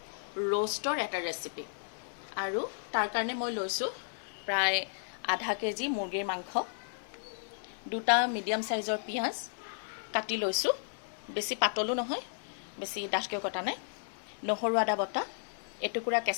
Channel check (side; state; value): right; silent; digital silence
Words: ৰোষ্টৰ এটা ৰেচিপি। আৰু তাৰ কাৰণে মই লৈছোঁ প্ৰায় আধা কেজি মুৰ্গীৰ মাংস, দুটা মিডিয়াম সাইজৰ পিঁয়াজ কাটি লৈছোঁ, বেছি পাতলো নহয় বেছি ডাঠকৈ কটা নাই, নহৰু আদা বটা, এটুকুৰা